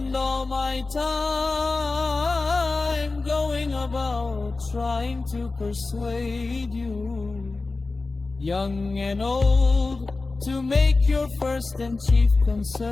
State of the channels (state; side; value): quieter; right; 3.6 dB